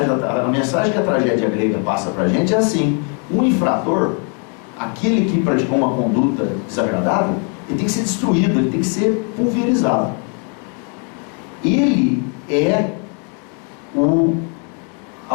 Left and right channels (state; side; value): quieter; right; 39.3 dB